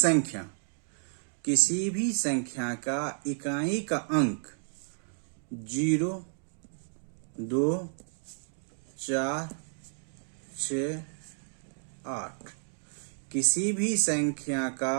संख्या का इकाई का अंक 0, 2, 4, 6, 8, किसी भी संख्या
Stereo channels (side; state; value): left; silent; 57 dB below the other